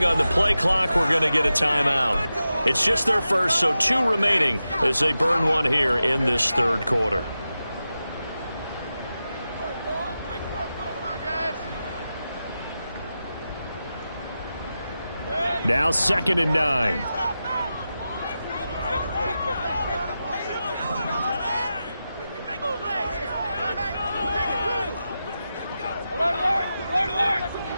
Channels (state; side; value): inverted; both; correlation -0.91